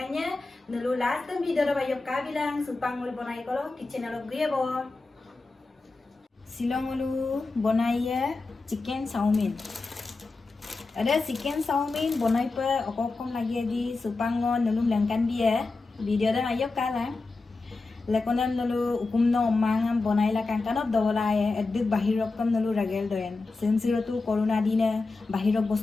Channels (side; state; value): right; quieter; 3.6 dB